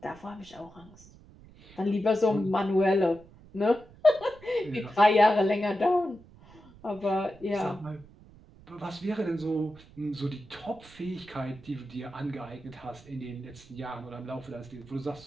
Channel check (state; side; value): noise; right; rumble, 23 dB below the sound